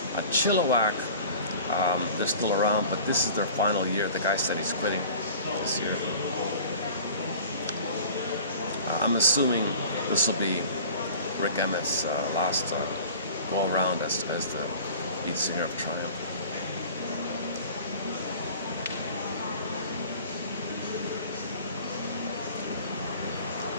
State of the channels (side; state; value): both; inverted; correlation -0.43